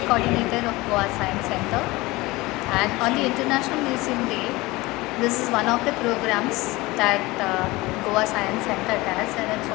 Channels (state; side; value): quieter; right; 21.2 dB